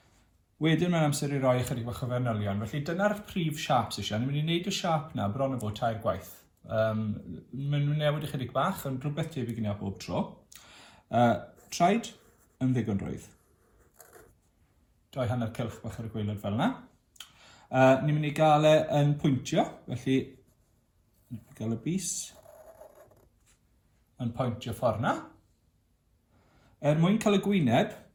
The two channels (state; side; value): identical; both; correlation 1.00